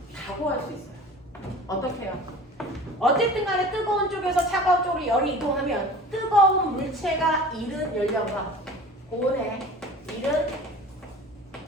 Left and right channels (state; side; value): normal; both; correlation 0.41